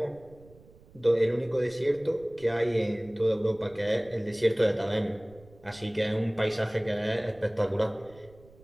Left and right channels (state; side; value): noise; right; rumble, 24 dB below the sound